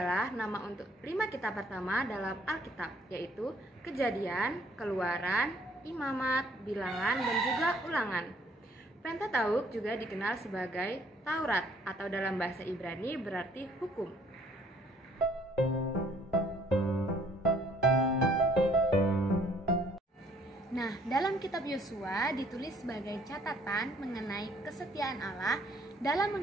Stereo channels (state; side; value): normal; both; correlation 0.62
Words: nama untuk 5 kitab pertama dalam Alkitab, yaitu Kejadian, Keluaran, Imamat, Bilangan, dan juga Ulangan. Pentateuk juga dikenal sebagai Taurat atau dalam bahasa Ibrani berarti hukum. Nah, dalam kitab Yosua ditulis sebagai catatan mengenai kesetiaan Allah dalam